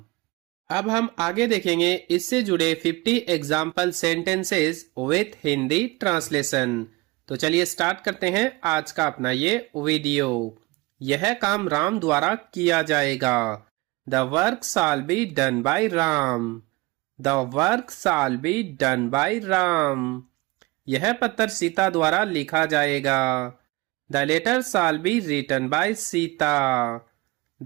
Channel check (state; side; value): quieter; left; 22.9 dB